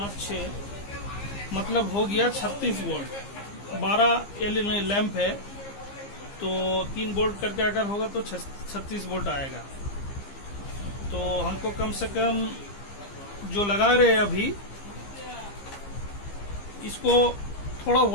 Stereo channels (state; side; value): late; right; 15 ms